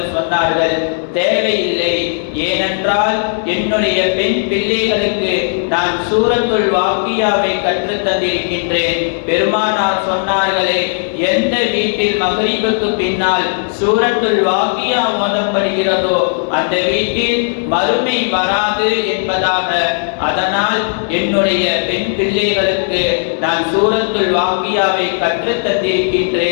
சொன்னார்கள், தேவையில்லை. ஏனென்றால் என்னுடைய பெண் பிள்ளைகளுக்கு நான் சூரத்துல் வாக்கியாவை கற்றுத் தந்திருக்கின்றேன். பெருமானார் சொன்னார்களே, எந்த வீட்டில் மக்ரிபுக்கு பின்னால் சூரத்துல் வாக்கியா ஓதப்படுகிறதோ அந்த வீட்டில் மறுமை வராது என்பதாக, அதனால் என்னுடைய பெண் பிள்ளைகளுக்கு நான் சூரத்துல் வாக்கியாவை கற்றுத்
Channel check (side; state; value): right; silent; digital silence